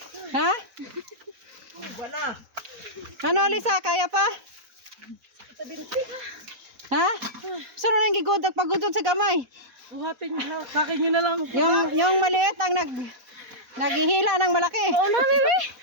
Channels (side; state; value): left; late; 4.0 ms